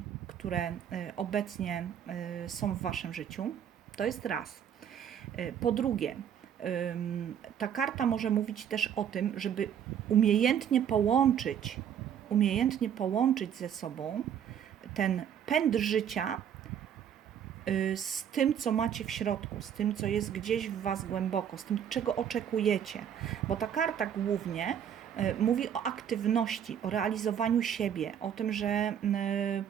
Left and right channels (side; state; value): left; quieter; 8.9 dB